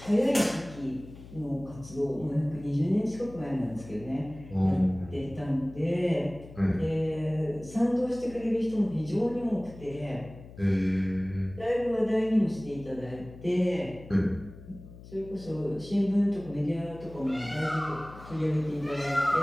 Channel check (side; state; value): left; noise; hum, 17 dB below the sound